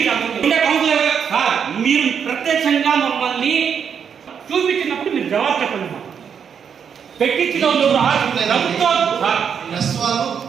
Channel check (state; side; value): quieter; left; 7.3 dB